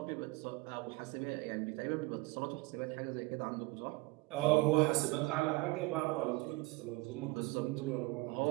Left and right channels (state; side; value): quieter; left; 23.1 dB